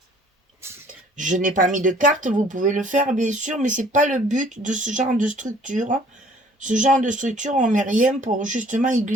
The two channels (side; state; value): both; normal; correlation 0.55